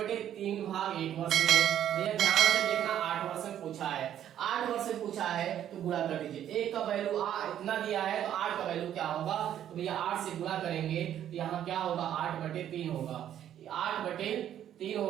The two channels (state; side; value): quieter; left; 10.7 dB